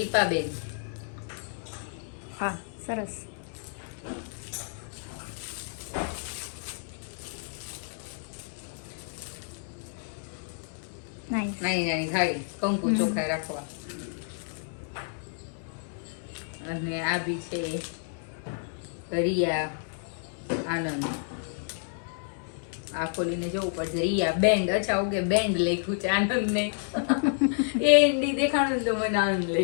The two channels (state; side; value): silent; right; digital silence